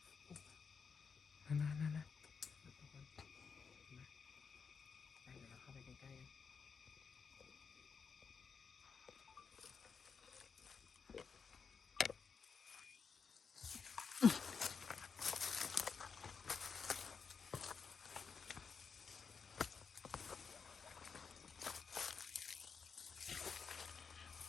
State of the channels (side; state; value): right; quieter; 5.8 dB